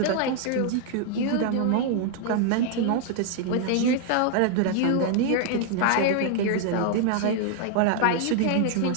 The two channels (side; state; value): both; different; correlation 0.00